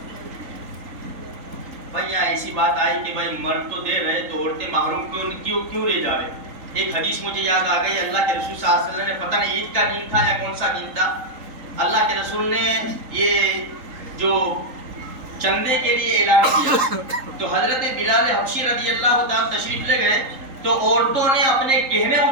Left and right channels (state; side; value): late; left; 3.8 ms